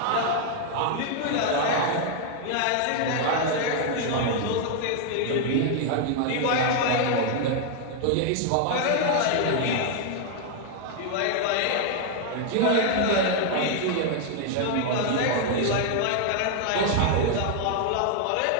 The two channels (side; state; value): both; different; correlation 0.00